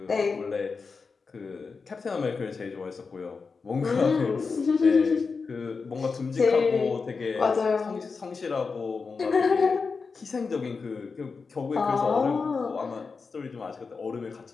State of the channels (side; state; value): right; quieter; 4.8 dB